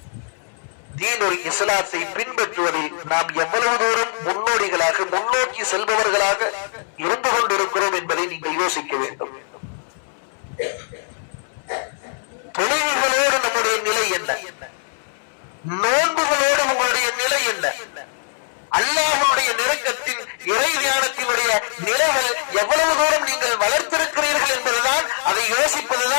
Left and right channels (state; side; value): silent; right; 65 dB below the other